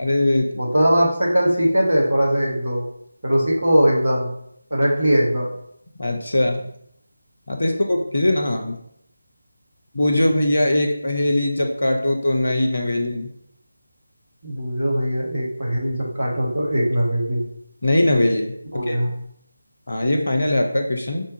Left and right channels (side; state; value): both; inverted; correlation -0.95